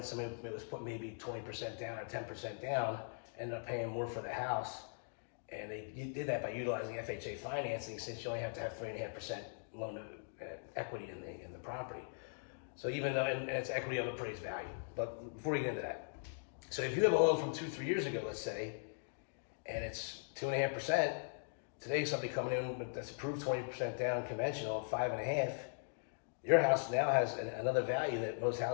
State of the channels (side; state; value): right; silent; digital silence